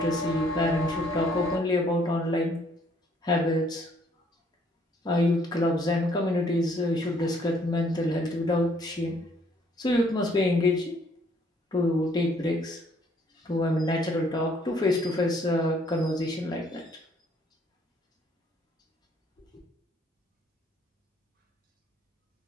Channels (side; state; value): both; normal; correlation 0.64